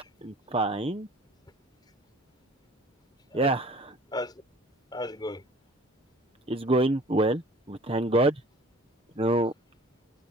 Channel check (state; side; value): normal; both; correlation 0.47